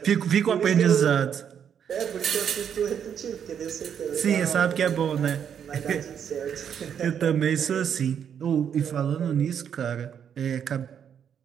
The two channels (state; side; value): quieter; left; 8.3 dB